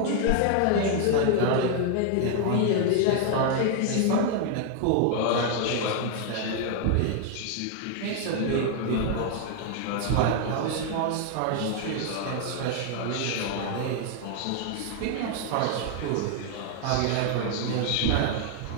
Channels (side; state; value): both; different; correlation 0.00